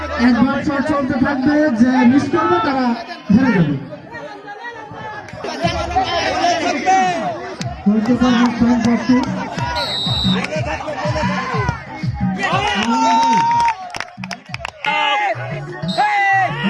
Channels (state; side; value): identical; both; correlation 1.00